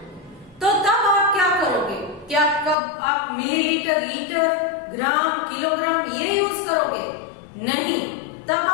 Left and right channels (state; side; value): drops out; right; at 2.8 s